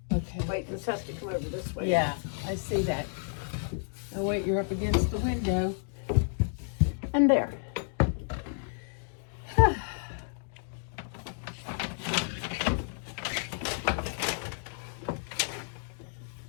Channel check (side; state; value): right; silent; digital silence